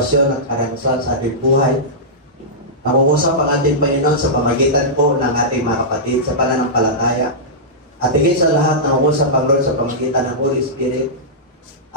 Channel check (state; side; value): normal; both; correlation -0.14